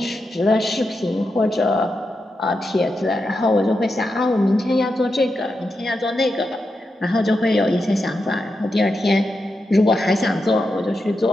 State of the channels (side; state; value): both; normal; correlation 0.87